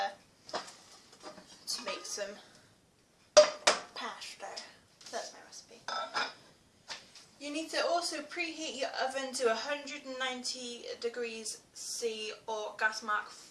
to make some pasta. That's my recipe. You need to also preheat your oven to 190 degrees C or gas mark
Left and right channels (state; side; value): identical; both; correlation 1.00